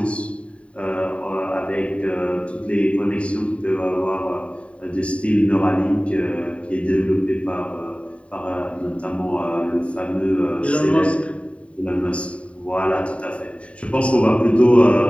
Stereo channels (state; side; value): late; right; 0.063 ms